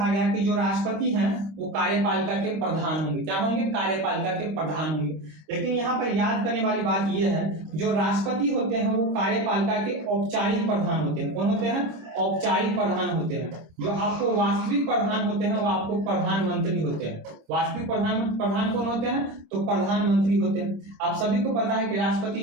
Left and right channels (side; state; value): left; late; 26 ms